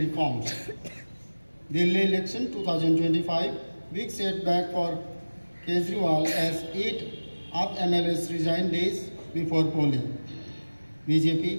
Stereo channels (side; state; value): both; inverted; correlation -1.00